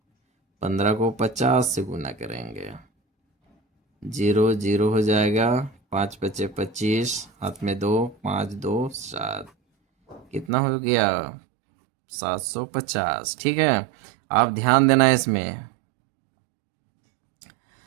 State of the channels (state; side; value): drops out; left; at 10.5 s